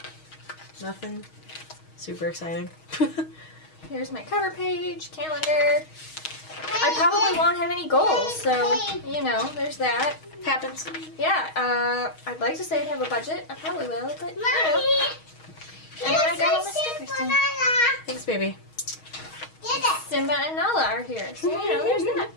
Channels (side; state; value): right; late; 6.3 ms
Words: Nothing super exciting. Here's my cover page, calendar. I probably won't have any goals, so, you know, there's that. Happens. Yeah, I'd like to say I'd have a budget. I probably will, but, you know. And then I got all my stickers done. Thanks, baby. Simba and Nala are here, so, you know, there's that.